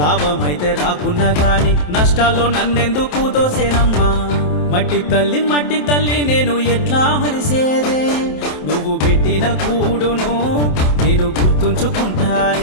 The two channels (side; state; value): right; late; 27 ms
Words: రాకున్నా గాని నష్టాల్లో నన్నెందుకు దోసేనమ్మా. మట్టి తల్లి నేను ఎట్లా మరిసేదే, నువ్వు పెట్టిన కూడును నేను